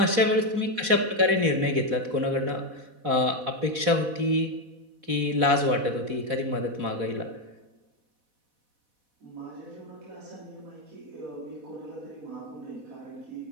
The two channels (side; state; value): left; late; 4.1 ms